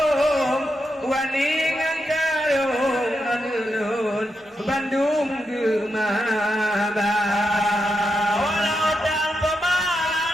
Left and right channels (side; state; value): both; normal; correlation 0.85